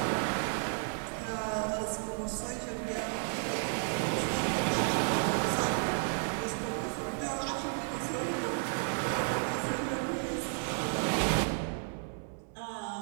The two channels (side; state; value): left; silent; 56 dB below the other